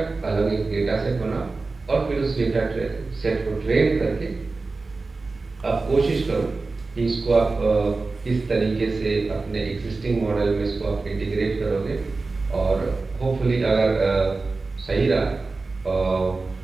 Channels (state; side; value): quieter; left; 3.7 dB